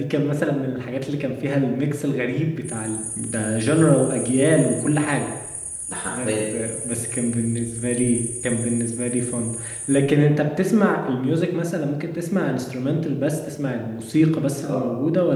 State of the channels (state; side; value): identical; both; correlation 1.00